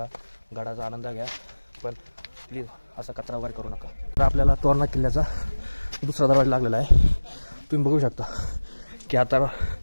गडाचा आनंद घ्या, पण प्लीज असा कचरा वगैरे करू नका. तर आपल्याला तोरणा किल्ल्याचा दुसरा दरवाजा लागलेला आहे. तुम्ही बघू शकता की आता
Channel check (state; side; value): inverted; both; correlation -1.00